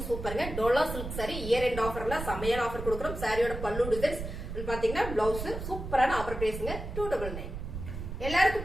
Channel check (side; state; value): right; noise; rumble, 7 dB below the sound